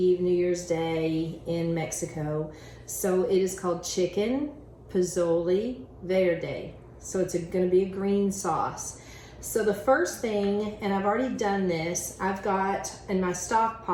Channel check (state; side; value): identical; both; correlation 1.00